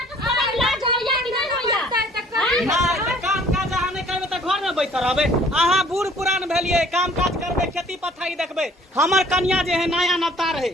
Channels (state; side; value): normal; both; correlation 0.55